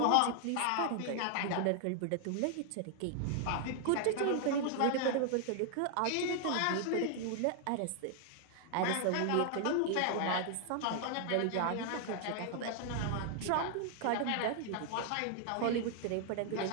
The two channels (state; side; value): different; both; correlation 0.00